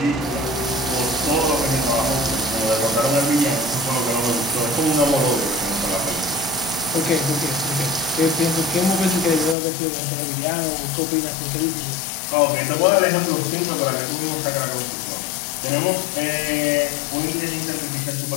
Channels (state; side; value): drops out; right; at 9.6 s